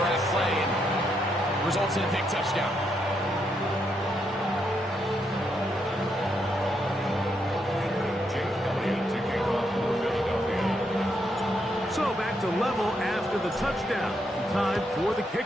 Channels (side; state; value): both; normal; correlation 0.78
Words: at play and results in a big touchdown. So back to level after the touchdown. Time for the